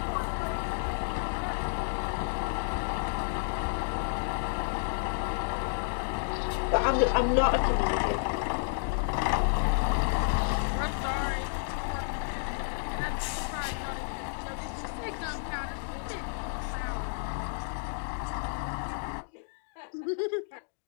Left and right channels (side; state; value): right; silent; digital silence